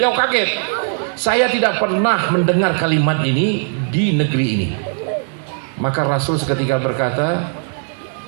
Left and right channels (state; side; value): silent; left; 67 dB below the other